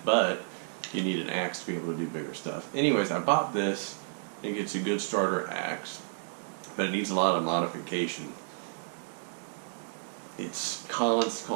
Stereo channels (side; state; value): left; silent; digital silence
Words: but you need an axe to be able to do bigger stuff. Anyways, I bought this. I think it's a good starter axe, but it needs a lot of modification. It's called